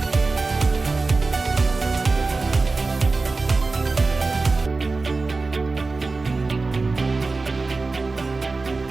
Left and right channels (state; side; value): quieter; left; 3.8 dB